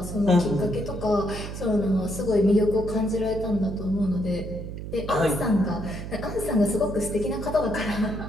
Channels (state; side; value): noise; right; hum, 8 dB below the sound